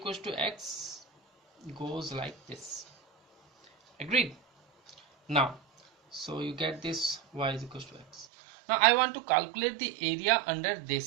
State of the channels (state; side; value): drops out; left; at 8.2 s